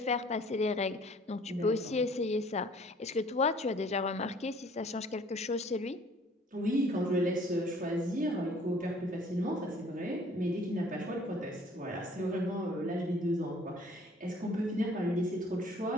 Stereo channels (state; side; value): normal; both; correlation 0.55